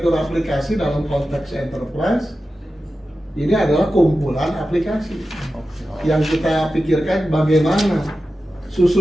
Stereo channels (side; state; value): both; normal; correlation 0.93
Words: aplikasi dalam konteks enterprise, ini adalah kumpulan aplikasi yang kita pikirkan bagaimana